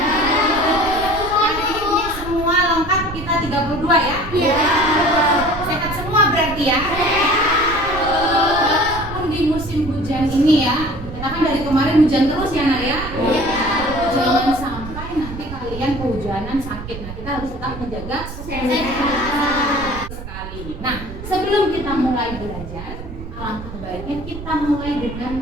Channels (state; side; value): noise; right; rumble, 10 dB below the sound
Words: Hari ini semua lengkap, kita 32 ya? Iya. Sehat semua berarti ya? Walaupun di musim hujan ini ya, kita kan dari kemarin hujan terus ya Nak ya? Iya. Jangan sampai nanti kalian kehujanan sakit. Nah, kita harus tetap menjaga kesehatan sekali. Nah, sebelum kita mulai belajar, alangkah baiknya kita mulai